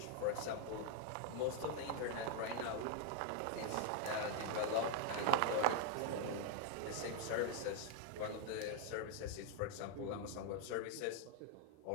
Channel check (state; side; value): different; both; correlation 0.00